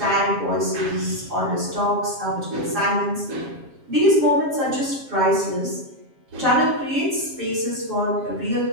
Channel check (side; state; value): left; late; 7.4 ms